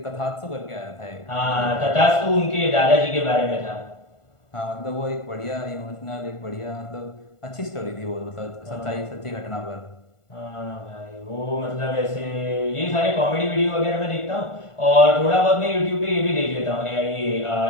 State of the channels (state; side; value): late; right; 1.5 ms